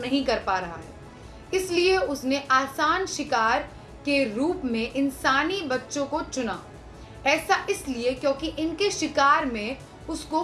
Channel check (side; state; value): both; identical; correlation 1.00